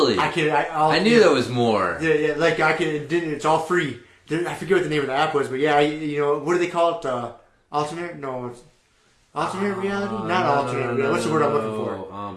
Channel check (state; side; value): identical; both; correlation 1.00